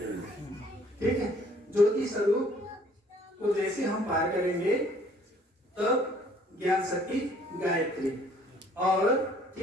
ठीक है, ज्योति स्वरूप को जैसे हम पार करेंगे तब ज्ञान शक्ति गायत्री। और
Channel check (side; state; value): both; normal; correlation 0.58